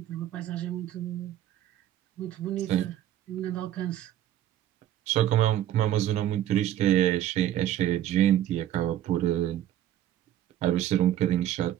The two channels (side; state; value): left; quieter; 12.2 dB